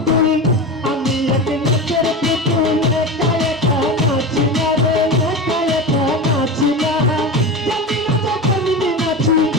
আমি এক নাচের পুতুল, একা একা নাচি না রে, একা একা নাচি না। জানি না তো কেমনি নাচি,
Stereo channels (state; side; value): normal; both; correlation 0.25